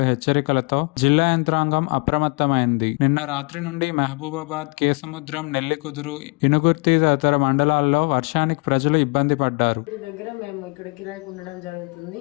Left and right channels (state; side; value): quieter; right; 32.3 dB